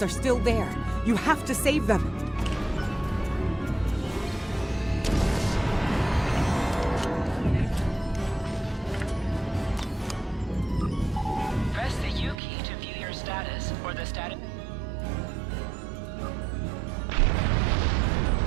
are still there. You have to save them. Press the U key to view your status or the status.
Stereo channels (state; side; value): drops out; left; at 12.4 s